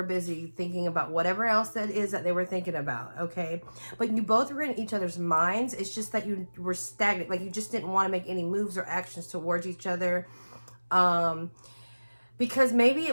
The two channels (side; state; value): both; inverted; correlation -1.00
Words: busy thinking about whatever else that is that they were thinking about, okay? But you both were in each other's minds. It's just that you were stagnant, like you just didn't want to make any moves or actions towards each other. Because maybe